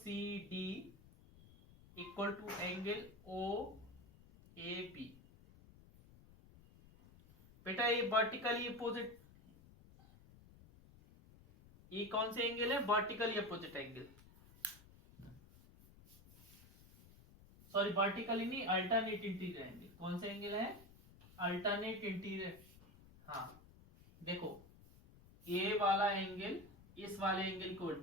equal to angle OAB। बेटा ये वर्टिकली अपोजिट, ये कौन से एंगल है, vertically opposite angle, sorry vertically नहीं, अल्टरनेट इंटीरियर एंगल। कौन से एंगल है, अल्टरनेट इंटीरियर। हाँ देखो ये वाला एंगल इस वाले एंगल को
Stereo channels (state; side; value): noise; left; rumble, 22 dB below the sound